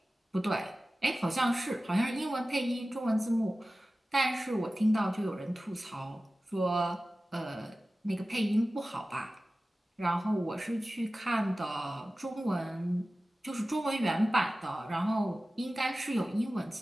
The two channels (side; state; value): both; normal; correlation 0.96